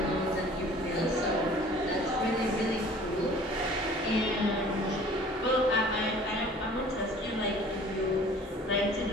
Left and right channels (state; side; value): normal; both; correlation 0.49